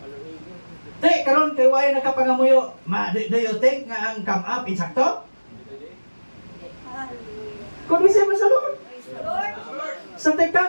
Te, karon kay way nakapangamuyo, do you think nga ang come up insakto? Kung siya sa Lord. Sa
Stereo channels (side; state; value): both; inverted; correlation -1.00